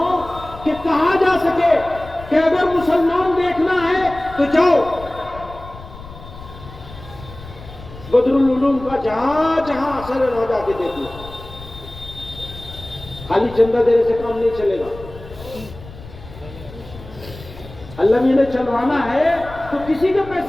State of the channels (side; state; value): left; noise; rumble, 16 dB below the sound